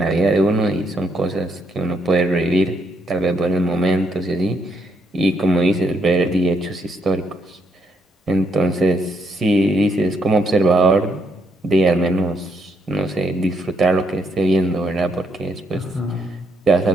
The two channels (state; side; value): normal; both; correlation 0.74